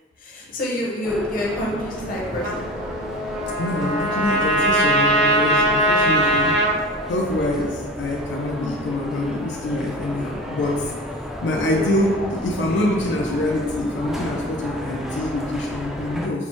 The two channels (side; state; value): both; normal; correlation 0.37